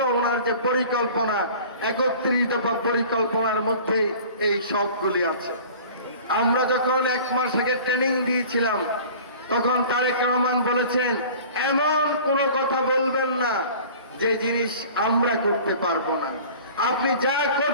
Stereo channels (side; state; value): both; inverted; correlation -0.44